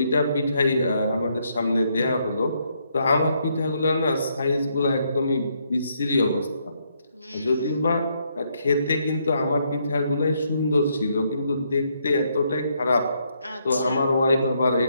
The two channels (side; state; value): both; inverted; correlation -0.74